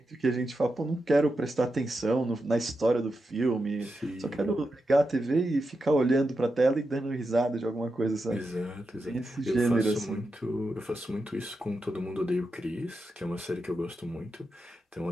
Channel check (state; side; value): normal; both; correlation 0.88